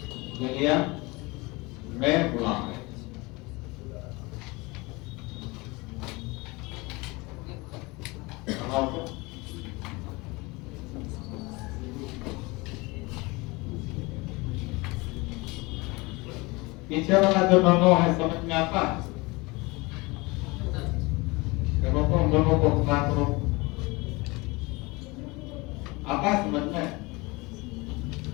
मिलियन में खुला है। पीछे वाला जो दोनों है समझ में आता है? हम दोनों को खुला करो, आता है समझ में?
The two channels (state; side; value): quieter; right; 24.6 dB